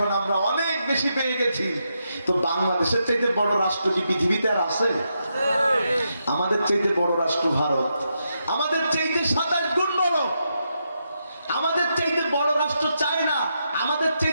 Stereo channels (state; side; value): inverted; both; correlation -0.83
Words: আমরা অনেক বেশি পেয়ে গেছি। তো বাংলাদেশের চাইতে বড় রাষ্ট্র কি পৃথিবীতে আর আছে? আমাদের চাইতে বড় রাষ্ট্র ভারত, আমাদের চাইতে 27 গুণ বড়। আমাদের চাইতে বড় রাষ্ট্র চায়না, আমাদের